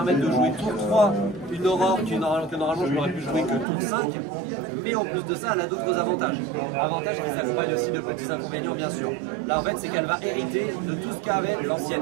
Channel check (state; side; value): drops out; left; at 3.7 s